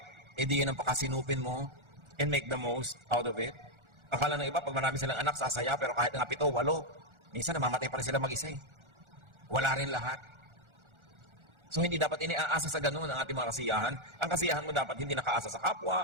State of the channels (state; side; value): late; left; 1.4 ms